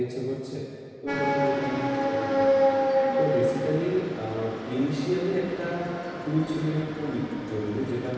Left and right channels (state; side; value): identical; both; correlation 1.00